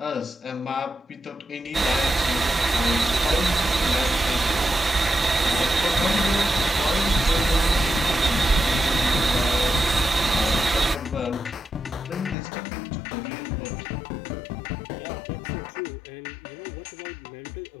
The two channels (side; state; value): right; drops out; at 12.4 s